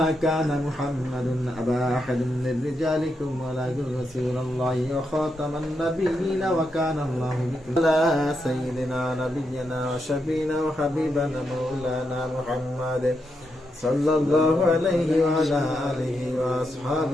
كان محمد أبا أحد من رجالكم ولكن رسول الله وخاتم النبيين وكان الله بكم على سيدنا نبينا وشفينا وحبيبنا مولانا محمد صلى الله عليه وعلى آله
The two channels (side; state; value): both; normal; correlation 0.83